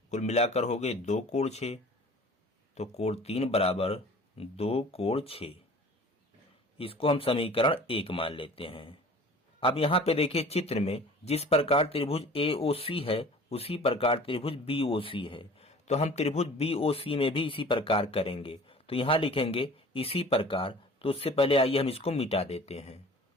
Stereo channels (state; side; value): normal; both; correlation 0.45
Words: कुल मिलाकर हो गए 2 कोण 6। तो कोण 3 बराबर 2 कोण 6। इसको हम समीकरण 1 मान लेते हैं। अब यहाँ पे देखिए चित्र में जिस प्रकार त्रिभुज AOC है उसी प्रकार त्रिभुज BOC है, तो हम त्रिभुज BOC में भी इसी प्रकार करेंगे। तो यहाँ लिखेंगे इसी प्रकार, तो उससे पहले आइए हम इसको मिटा देते हैं।